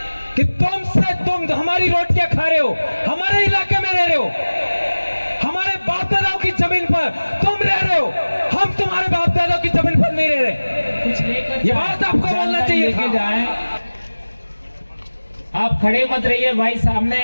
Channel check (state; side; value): inverted; both; correlation -1.00